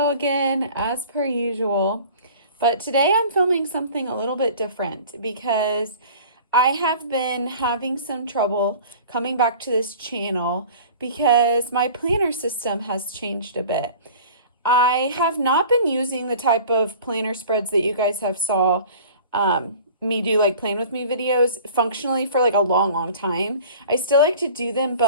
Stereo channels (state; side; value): inverted; both; correlation -0.44